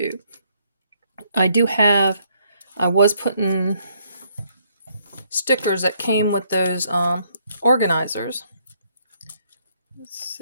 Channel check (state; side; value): inverted; both; correlation -0.70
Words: I was putting stickers that came with those organizers. Let's